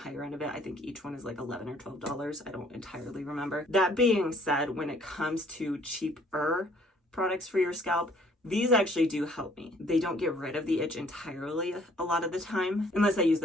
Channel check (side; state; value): both; normal; correlation 0.60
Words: end of it. I think each one is like $11 or $12. I don't entirely remember. That being said, when it comes to cheaper products for your scalp, these actually do help me. They don't get rid of the itch entirely a lot of the time, unless I use